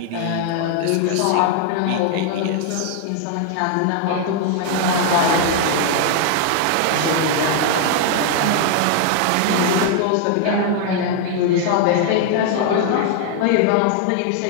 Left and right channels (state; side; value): different; both; correlation 0.00